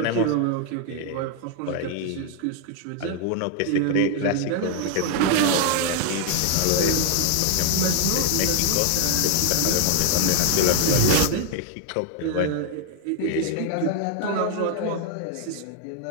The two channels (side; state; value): both; different; correlation 0.00